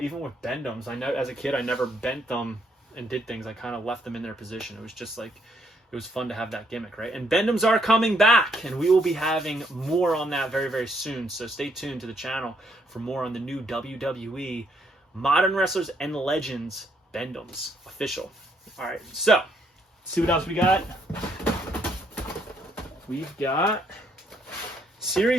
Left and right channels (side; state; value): both; normal; correlation 0.71